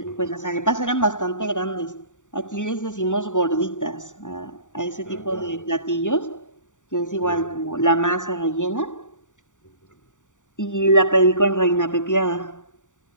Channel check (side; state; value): right; late; 0.86 ms